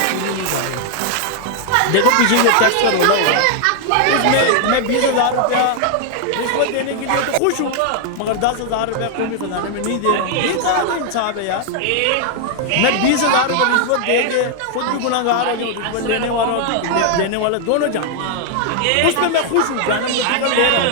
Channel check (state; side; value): different; both; correlation 0.00